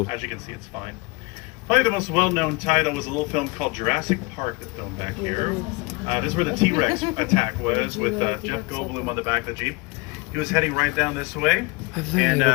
As you can see, it's fine. Probably the most well-known title was a little film called Jurassic Park that filmed back here. This is where the T-Rex attack was, with Jeff Goldblum on the back of the Jeep. He was heading right down this way, and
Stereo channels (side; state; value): right; quieter; 26.0 dB